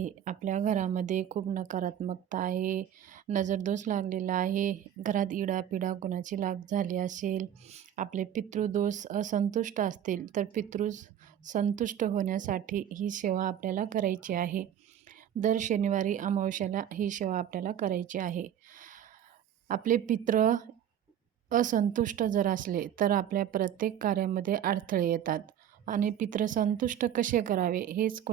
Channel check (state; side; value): quieter; left; 10.1 dB